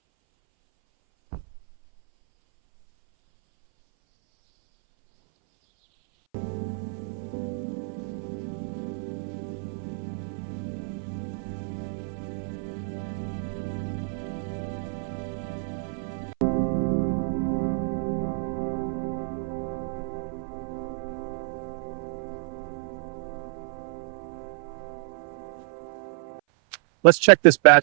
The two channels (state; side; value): silent; left; 57 dB below the other